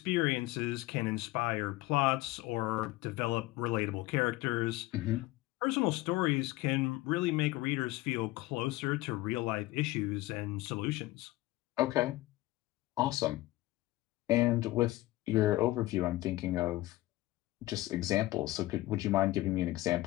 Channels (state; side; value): quieter; right; 18.2 dB